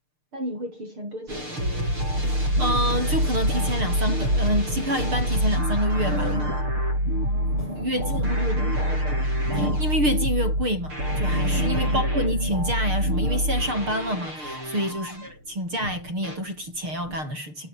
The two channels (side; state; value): left; late; 6.6 ms